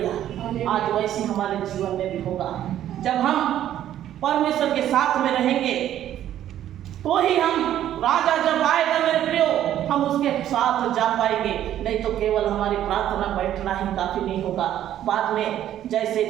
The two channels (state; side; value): quieter; left; 11.6 dB